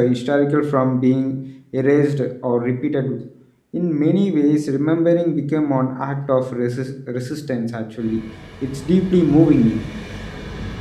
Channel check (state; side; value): identical; both; correlation 1.00